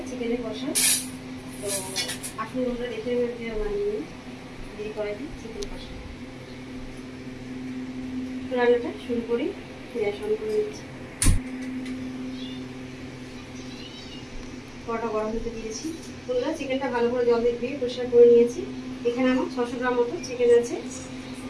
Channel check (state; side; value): identical; both; correlation 1.00